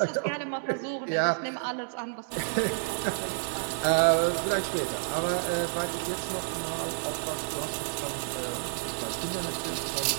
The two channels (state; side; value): silent; left; 58 dB below the other